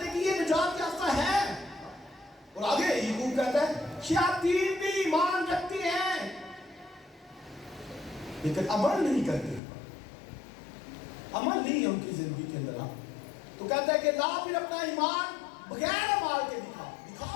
کہ یہ نجات یافتہ ہے. اور آگے یعقوب کہتا ہے شیاطین بھی ایمان رکھتی ہیں لیکن عمل نہیں کرتے. عمل نہیں ہے ان کی زندگی کے اندر. تو کہتا ہے کہ لا پھر اپنا ایمان بغیر اعمال کے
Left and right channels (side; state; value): right; drops out; at 9.6 s